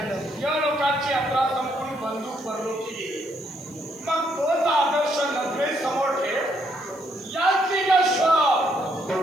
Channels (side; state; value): left; noise; hiss, 26 dB below the sound